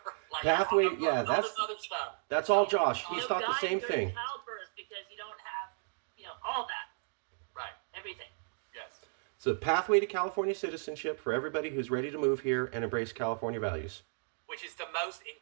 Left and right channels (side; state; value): left; silent; digital silence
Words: Pathway, all this other stuff. That's all Josh. He's thought the same thing. Childbirth, because you don't have, all that. Right. Everything. Yes. It's a pathway to California citizenship for everybody who's ready to move here and embrace California values. Which is the most